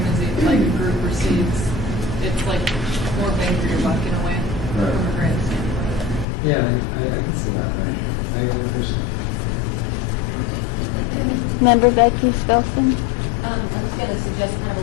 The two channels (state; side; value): drops out; right; at 6.2 s